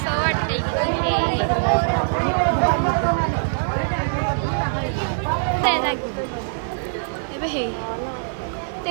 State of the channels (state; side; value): silent; left; digital silence